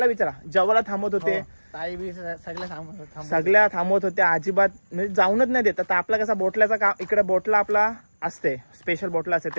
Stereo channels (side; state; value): both; inverted; correlation -1.00